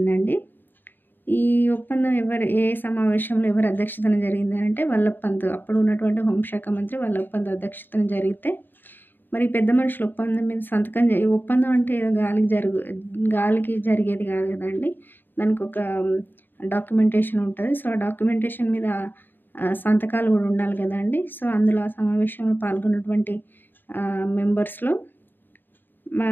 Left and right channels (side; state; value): right; late; 0.093 ms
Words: ఈ ఒప్పందం ఏ సమావేశంలో ఎవరి అధ్యక్షతన జరిగింది అంటే వల్లభ్ పంత్, అప్పుడు ఉన్నటువంటి హోంశాఖ మంత్రి వల్లభ్ పంత్ అధ్యక్షతన జరిగితే మరి పెద్ద మనుషుల ఒప్పందం మీద ఒప్పందం అంటే ఏదో గాలికి జరిగేది కాదు కదండి. దానికి ఒక డాక్యుమెంటేషన్ ఉంటుంది. సో, ఆ డాక్యుమెంటేషన్ మీద సంతకాలు కూడా ఉండాలి కదండి. సో, అందులో ఆ సమావేశంలో పాల్గొన్నటువంటి మెంబర్స్లో